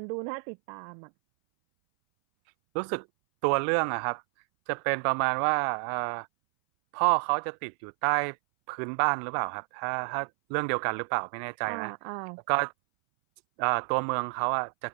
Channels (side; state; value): left; silent; 58 dB below the other